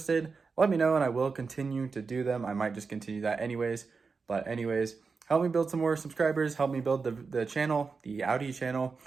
let me know, and I will continue to do them. I might just continue that anyways. But anyways, help me build some more subscribers. Help me build the channel, the Audi channel,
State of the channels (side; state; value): left; quieter; 4.8 dB